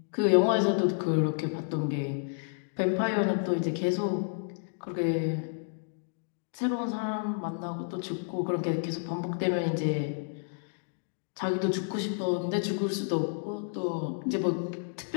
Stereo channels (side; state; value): right; silent; digital silence